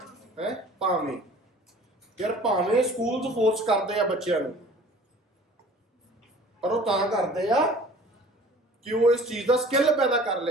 ਹੈ ਭਾਵੇਂ। ਯਾਰ ਭਾਵੇਂ ਸਕੂਲਸ ਫੋਰਸ ਕਰਦੇ ਆ ਬੱਚਿਆਂ ਨੂੰ, ਪਰ ਉਹ ਤਾਂ ਕਰਦੇ ਆ ਕਿ ਉਹ ਇਸ ਚੀਜ਼ ਦਾ ਸਕਿੱਲ ਪੈਦਾ ਕਰ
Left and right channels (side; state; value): both; normal; correlation 0.48